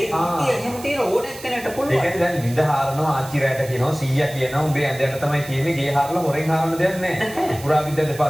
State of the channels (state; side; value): noise; right; hiss, 16 dB below the sound